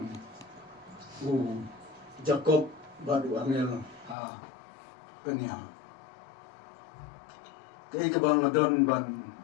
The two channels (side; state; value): right; drops out; at 4.2 s